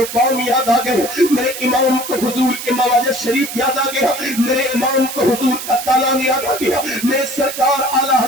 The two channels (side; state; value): right; noise; hiss, 8 dB below the sound